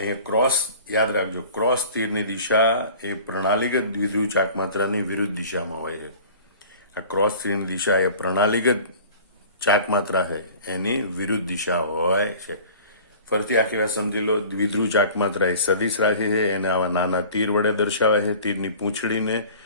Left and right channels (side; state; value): both; inverted; correlation -0.45